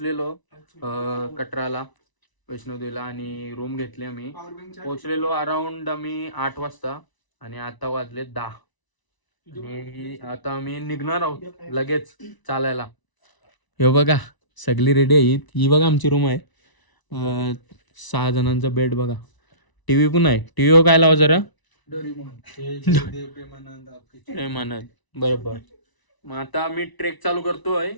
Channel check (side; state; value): right; late; 1.0 ms